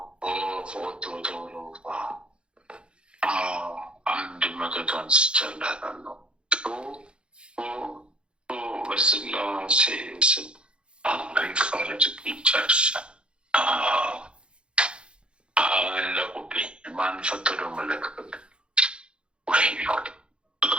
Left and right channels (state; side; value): late; left; 0.055 ms